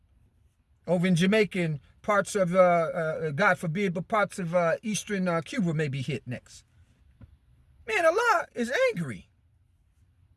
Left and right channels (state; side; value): identical; both; correlation 1.00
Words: over in Jamaica and parts of, God forbid, but parts of eastern Cuba may be hit next. Man, Allah is angry.